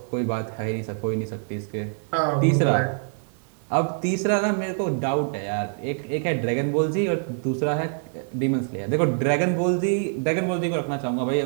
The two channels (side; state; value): left; silent; 62 dB below the other